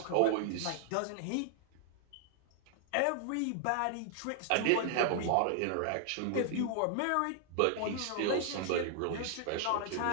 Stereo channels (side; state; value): both; different; correlation 0.00